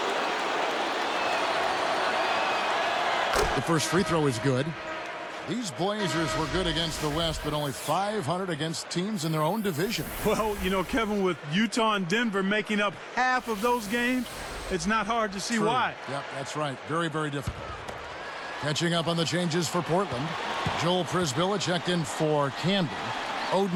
The first free throw is good. These Blazers were good against the West, but only 500 against teams in their own division. Well, you know, Kevin, with Utah and Denver making up half of those games, it's not hard to see why. Yep, that's right. Very, very difficult. Catching up on the changes for Portland. Joel Prisbilla checked in for Camden.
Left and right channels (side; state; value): both; identical; correlation 1.00